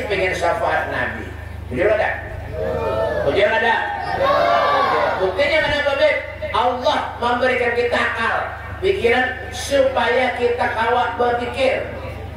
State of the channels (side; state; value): both; identical; correlation 1.00